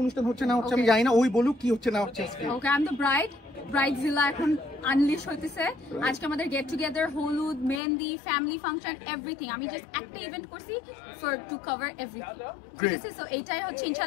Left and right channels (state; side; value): drops out; right; at 7.8 s